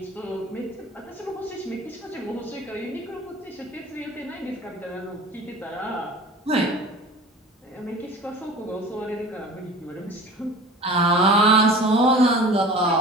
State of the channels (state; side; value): normal; both; correlation 0.40